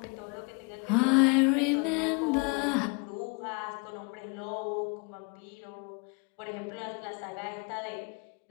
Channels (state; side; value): quieter; right; 32.5 dB